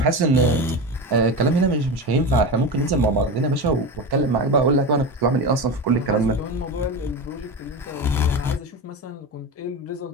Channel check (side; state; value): both; normal; correlation 0.22